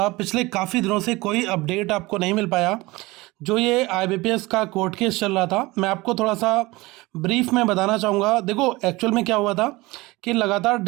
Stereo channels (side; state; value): left; quieter; 21.4 dB